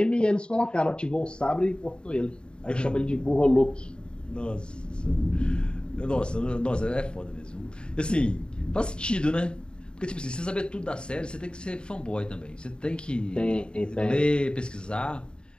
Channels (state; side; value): late; right; 0.051 ms